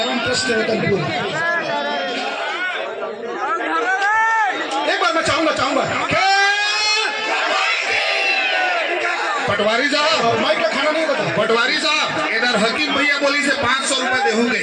ट्रस्ट रतनपुर। एक बार मैं चाहूंगा पटवारी साहब, माइक का खाना नहीं बता। पटवारी साहब इधर हकीम भैया बोली से 500 रुपए देहूंगे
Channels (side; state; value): both; identical; correlation 1.00